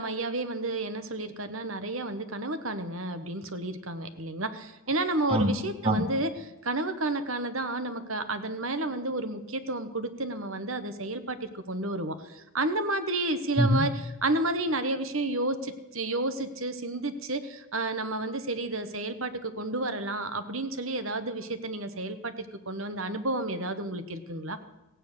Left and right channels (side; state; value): both; normal; correlation 0.11